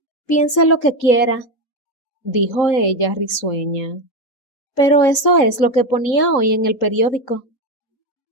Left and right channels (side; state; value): right; late; 3.8 ms